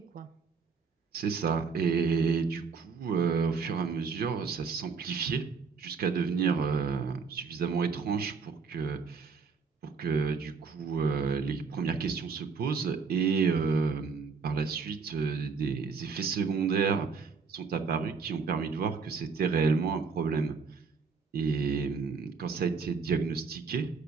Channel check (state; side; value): quieter; left; 5.2 dB